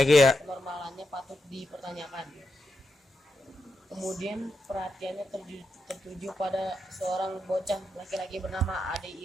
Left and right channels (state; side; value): normal; both; correlation 0.84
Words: patut dipertanyakan. Kemudian perhatiannya tertuju pada seorang bocah laki-laki bernama Ade